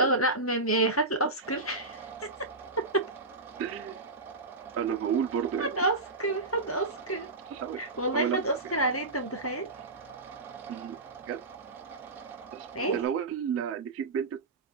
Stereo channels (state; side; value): quieter; left; 3.3 dB